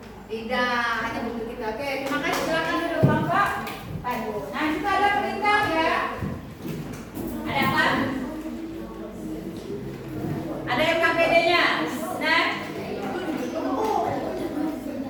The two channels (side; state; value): both; identical; correlation 1.00